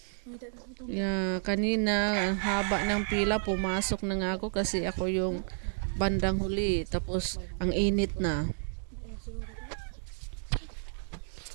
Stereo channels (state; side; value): silent; left; digital silence